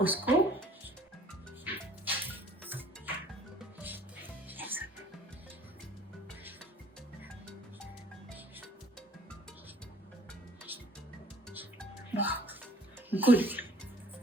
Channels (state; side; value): normal; both; correlation 0.55